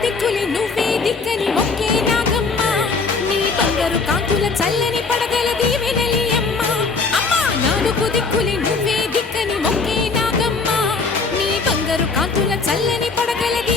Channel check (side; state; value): right; quieter; 4.4 dB